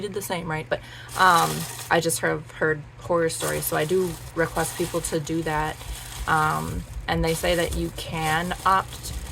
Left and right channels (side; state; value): both; identical; correlation 1.00